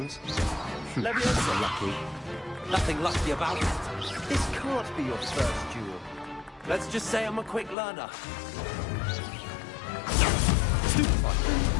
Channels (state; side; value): drops out; right; at 7.8 s